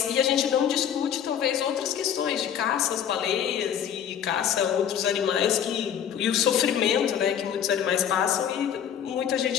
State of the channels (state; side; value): quieter; right; 9.1 dB